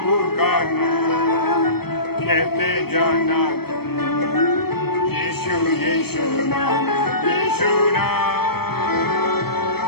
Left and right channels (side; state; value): right; late; 0.96 ms